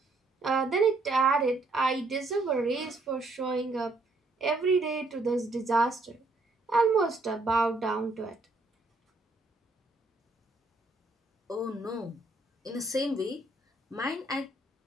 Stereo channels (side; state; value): left; quieter; 3.1 dB